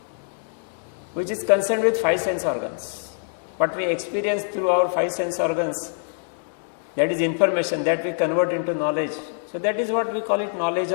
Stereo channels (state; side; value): silent; right; digital silence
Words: which is concerned with 5 sense organs, what we experience through our 5 sense organs, that is information that we convert into knowledge. So that is what we call it knowledge